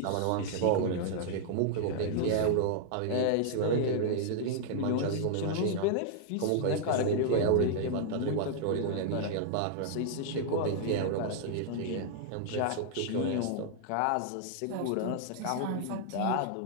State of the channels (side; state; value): both; different; correlation -0.01